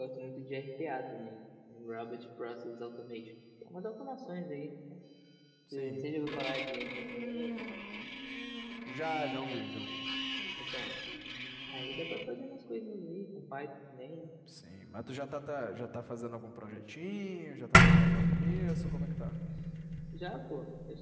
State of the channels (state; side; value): identical; both; correlation 1.00